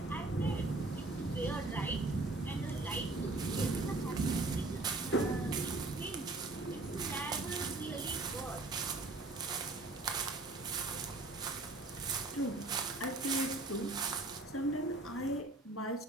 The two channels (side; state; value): left; quieter; 3.0 dB